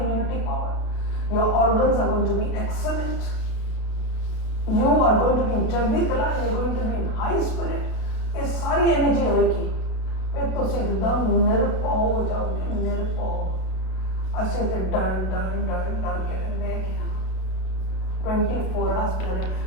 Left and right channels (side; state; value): right; late; 32 ms